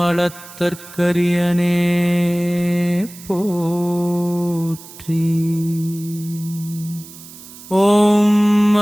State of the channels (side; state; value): right; noise; hiss, 18 dB below the sound